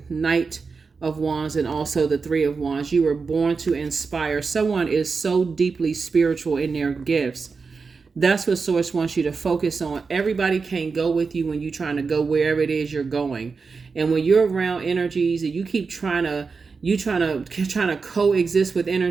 Knight of Wands and also the Three of Wands. You were born to inspire. Someone is so deeply spiritual in their gifts. That's what Source wants you to focus on. Everybody can't go with you when you're trying to go wherever it is you're going. And when you're around energies and you keep trying to coexist with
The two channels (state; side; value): quieter; left; 4.8 dB